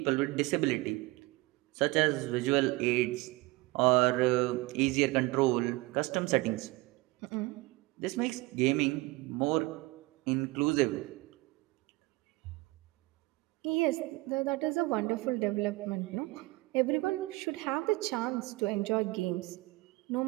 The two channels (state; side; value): quieter; left; 21.7 dB